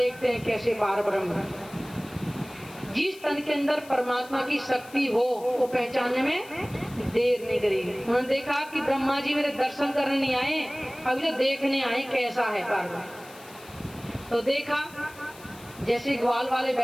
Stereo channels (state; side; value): noise; left; hiss, 21 dB below the sound